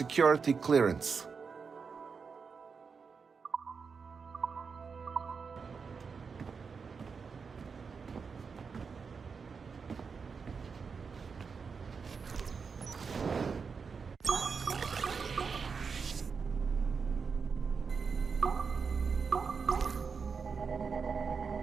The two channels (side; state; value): left; quieter; 5.5 dB